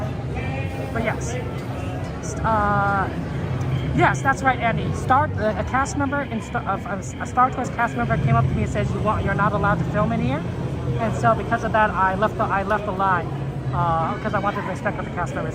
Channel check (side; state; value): both; identical; correlation 1.00